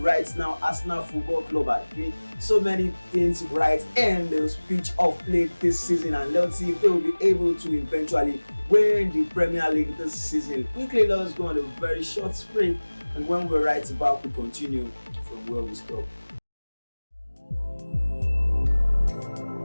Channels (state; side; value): inverted; both; correlation -1.00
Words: now. Arsenal Football Club are doing so many things right in the pitch of play this season, and let's see if they will be able to eventually win the Premier League this season. Quickly, let's go on a very short sprint, and when we're right back, we continue from where we stop.